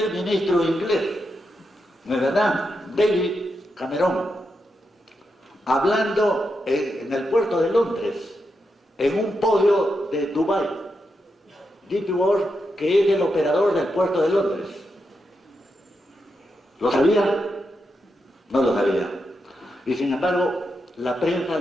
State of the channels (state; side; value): normal; both; correlation 0.85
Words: ministro inglés, ¿no es verdad? David Cameron, hablando en el puerto de Londres, en un podio de Dubái, DP World, que es el operador del puerto de Londres. ¿Lo sabía? No lo sabía. Y sin embargo, la prensa